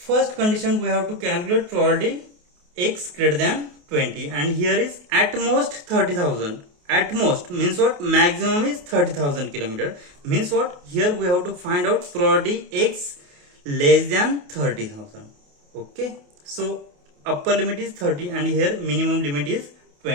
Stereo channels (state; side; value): late; left; 28 ms